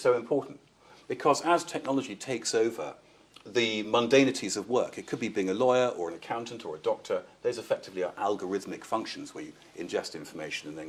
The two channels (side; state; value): both; identical; correlation 1.00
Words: important. Because as technology takes over the mundanities of work, it could be being a lawyer or an accountant or a doctor, those effectively are algorithmic functions where you ingest information and